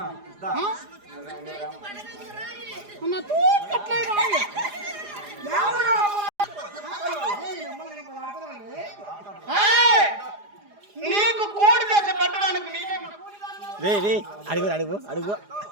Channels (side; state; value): left; late; 4.9 ms